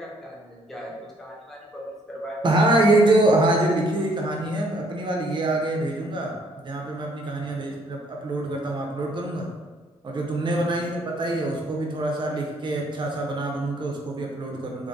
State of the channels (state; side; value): normal; both; correlation 0.65